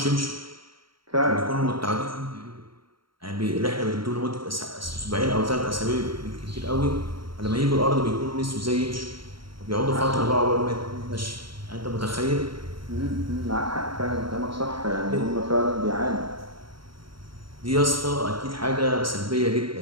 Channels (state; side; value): late; left; 0.73 ms